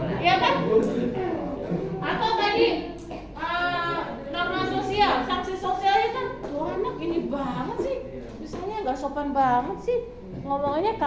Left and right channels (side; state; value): both; identical; correlation 1.00